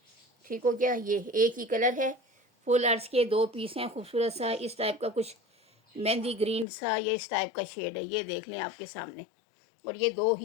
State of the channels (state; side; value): drops out; right; at 6.7 s